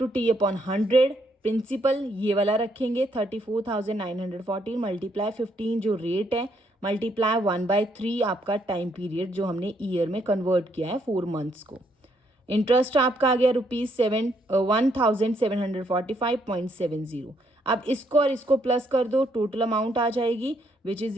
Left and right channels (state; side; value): normal; both; correlation 0.72